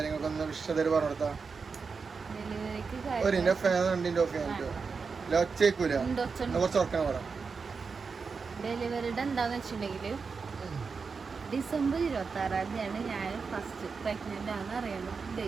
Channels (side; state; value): left; quieter; 5.1 dB